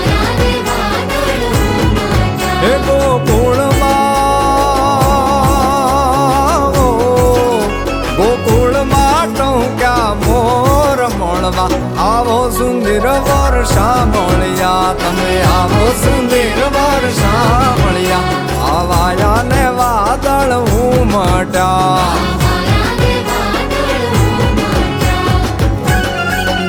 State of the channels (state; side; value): identical; both; correlation 1.00